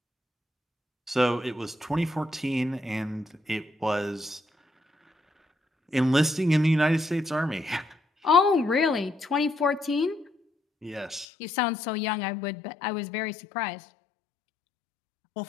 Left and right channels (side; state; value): right; drops out; at 11.2 s